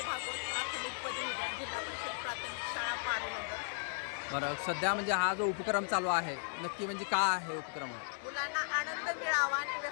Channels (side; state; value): right; silent; digital silence